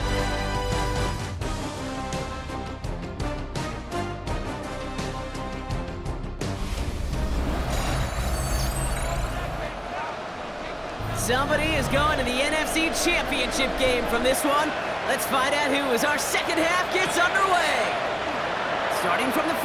Somebody is going to the NFC Championship game from this one. Let's find out who as our second half gets underway. Starting from the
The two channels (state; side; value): identical; both; correlation 1.00